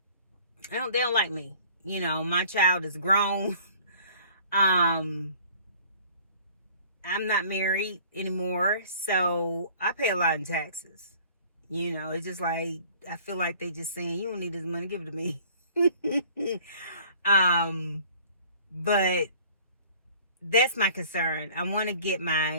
don't like me. You know, my child is grown. I'm not married anymore, so I pay a lot in taxes. You know, it's just like, I feel like they just saying, you don't need this money, give it to me. But that's my concern. I want to get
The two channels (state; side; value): inverted; both; correlation -0.51